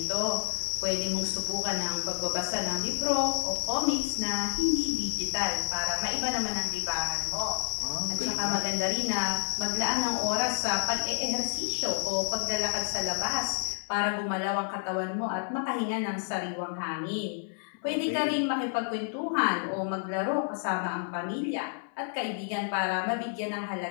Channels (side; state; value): right; silent; 58 dB below the other